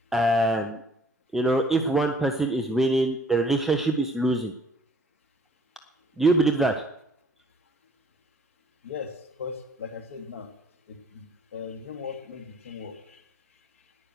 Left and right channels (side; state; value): both; normal; correlation 0.59